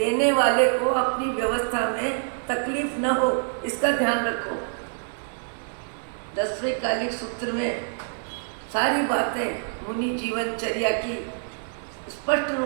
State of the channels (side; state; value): left; silent; 61 dB below the other